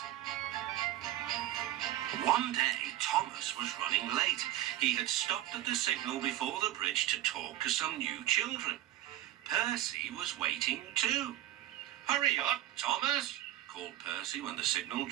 One day, Thomas was running late. He had stopped at the signal before the bridge to talk to some new children. Percy was waiting too. "Hurry up, Thomas," called Percy when the signal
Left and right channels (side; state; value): left; quieter; 13.6 dB